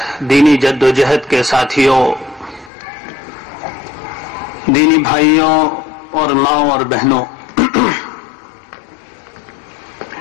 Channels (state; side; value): drops out; right; at 2.7 s